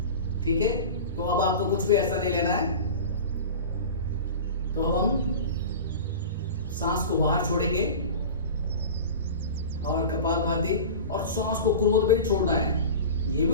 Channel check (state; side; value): inverted; both; correlation -0.33